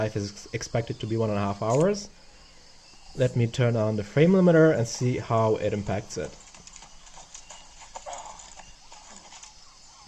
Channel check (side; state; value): both; identical; correlation 1.00